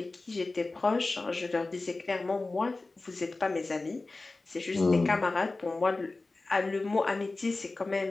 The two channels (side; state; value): right; quieter; 3.3 dB